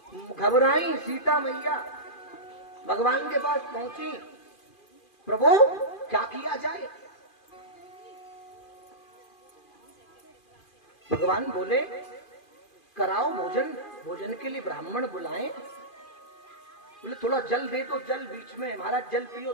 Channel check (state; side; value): late; right; 2.4 ms